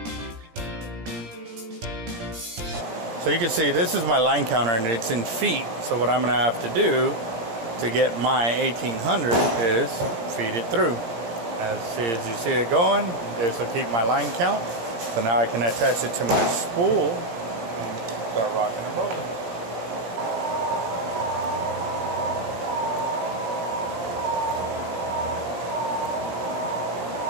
So you can see this is my line counter and it's in feet. So what I'm going to have to do to get my 1800 is feed it through. As you see it going, this will keep my line count. So now I can attach it to my spool and start rocking and rolling.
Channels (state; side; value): late; left; 17 ms